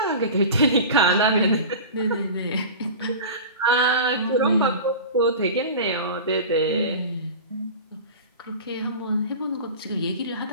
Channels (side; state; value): both; inverted; correlation -0.33